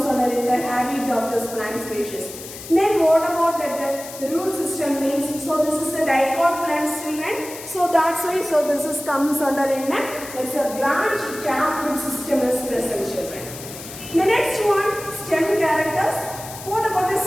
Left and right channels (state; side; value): noise; left; hiss, 13 dB below the sound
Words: under in the habit of this plant species. Then what about that the root system means? So this is a dicot plant, children. So that's why so this is comes under in it's a branch tap root system is present, children. The next one, stem characters. What about the